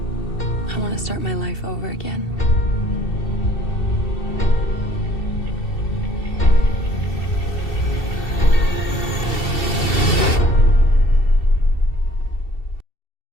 I want to start my life over again.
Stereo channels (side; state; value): right; late; 2.7 ms